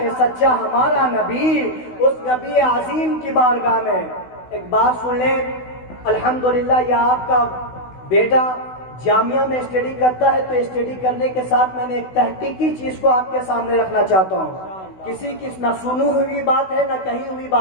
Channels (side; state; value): right; late; 16 ms